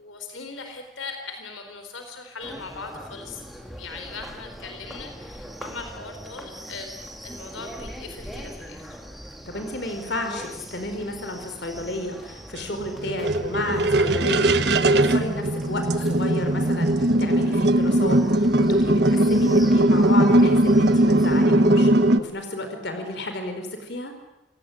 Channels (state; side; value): normal; both; correlation 0.56